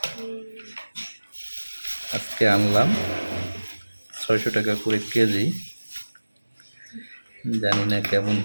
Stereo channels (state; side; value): inverted; both; correlation -1.00